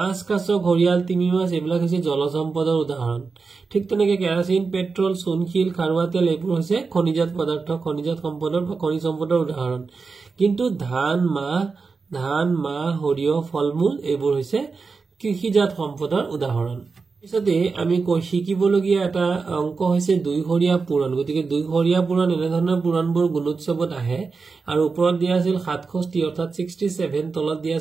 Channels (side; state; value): left; quieter; 4.6 dB